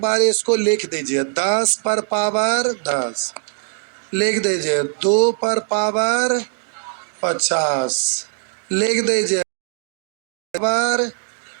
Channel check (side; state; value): left; silent; 65 dB below the other